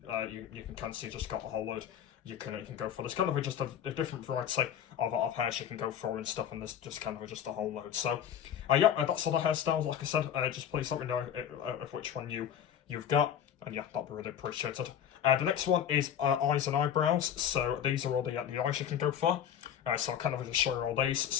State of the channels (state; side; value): quieter; right; 9.4 dB